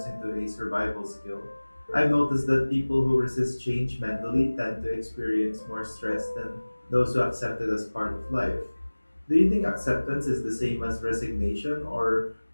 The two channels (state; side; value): inverted; both; correlation -1.00